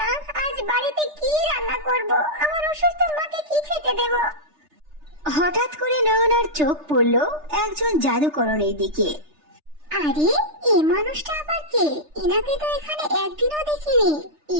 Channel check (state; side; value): late; left; 3.3 ms